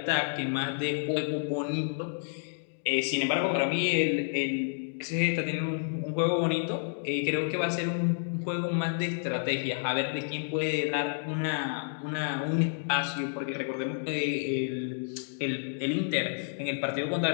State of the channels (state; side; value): silent; right; digital silence